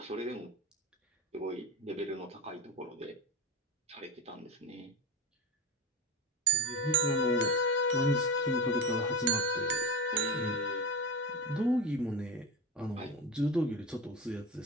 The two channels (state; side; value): normal; both; correlation 0.24